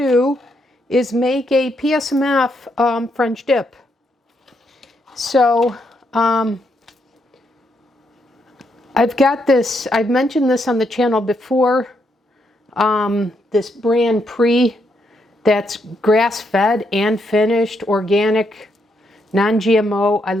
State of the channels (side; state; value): both; normal; correlation 0.77